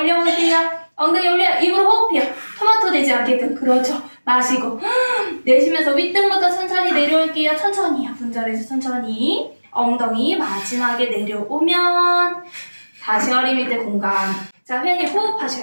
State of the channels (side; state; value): both; inverted; correlation -1.00